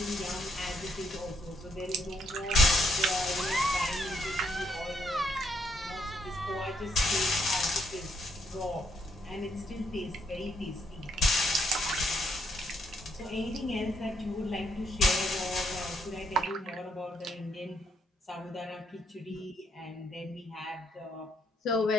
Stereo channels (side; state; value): both; normal; correlation 0.73